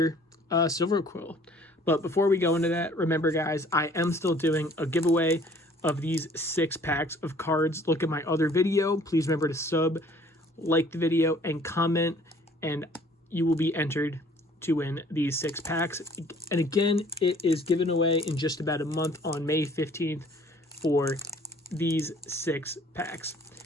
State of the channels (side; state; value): both; normal; correlation 0.55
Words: Silverquill. But before we go into that, remember guys, I am still doing a giveaway of these 6 packs of cards. Look at my other video, please remember to sub, like the video, and comment, and you will be entered to win these 6 packs. And again, it is given away in just about a month on May 15th for these 6 packs.